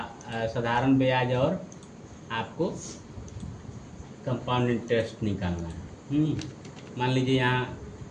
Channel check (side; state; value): both; identical; correlation 1.00